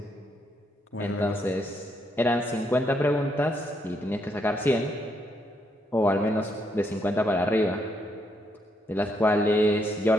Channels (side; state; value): both; normal; correlation 0.76